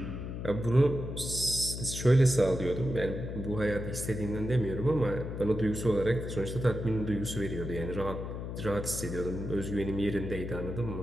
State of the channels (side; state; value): left; noise; hum, 6 dB below the sound